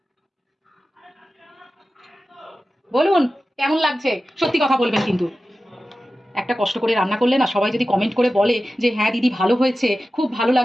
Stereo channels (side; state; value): both; normal; correlation 0.94